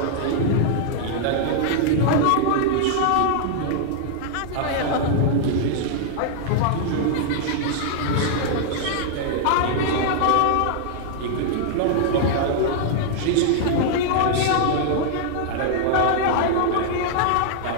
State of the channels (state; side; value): different; both; correlation -0.01